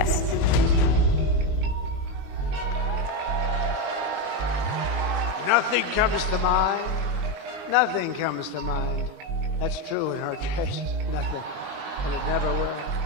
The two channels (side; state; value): left; late; 20 ms